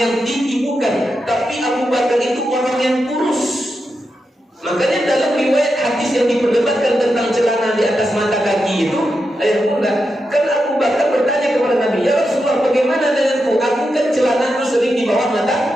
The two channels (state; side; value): normal; both; correlation 0.87